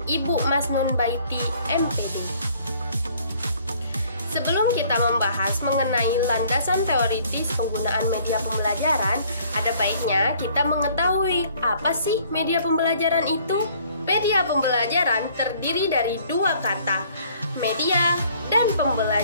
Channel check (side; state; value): both; inverted; correlation -0.59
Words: Ibu Masnun Baiti MPD. Sebelum kita membahas mengenai landasan teoritis penggunaan media pembelajaran, ada baiknya kita mengetahui apa sih media pembelajaran itu? Media pembelajaran terdiri dari dua kata, media dan